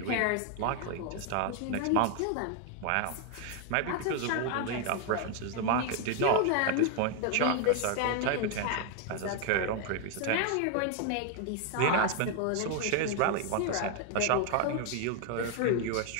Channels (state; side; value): different; both; correlation 0.01